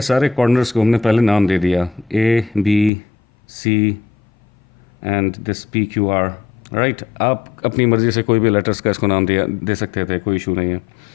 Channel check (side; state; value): right; drops out; at 2.9 s